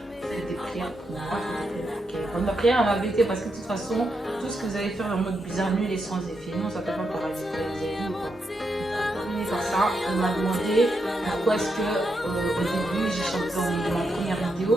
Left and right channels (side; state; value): both; normal; correlation 0.83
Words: Faites des prières pour moi, faites des prières pour Kéron. Ma prière m'a bêté parce que de toute façon, tout ce que vous allez faire en mode bizarre, nul et sans effet, non, ça ne peut pas paraître. Par ça, on m'a demandé pourquoi est-ce que au début j'ai chanté dans ma première vidéo,